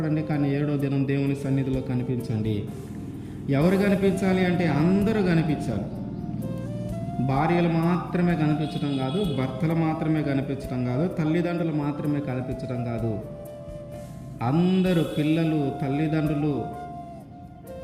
కానీ 7వ దినం దేవుని సన్నిధిలో కనిపించండి. ఎవరు కనిపించాలి అంటే అందరూ కనిపించాలి. భార్యలు మాత్రమే కనిపించడం కాదు, భర్తలు మాత్రమే కనిపించడం కాదు, తల్లిదండ్రులు మాత్రమే కనిపించడం కాదు, అందరూ, పిల్లలు, తల్లిదండ్రులు,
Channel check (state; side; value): identical; both; correlation 1.00